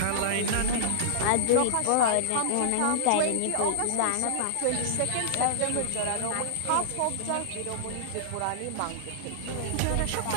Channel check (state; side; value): different; both; correlation -0.01